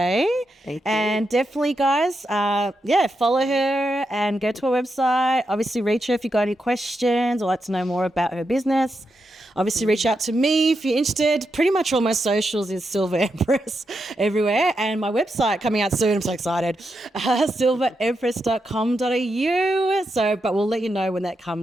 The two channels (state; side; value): normal; both; correlation 0.85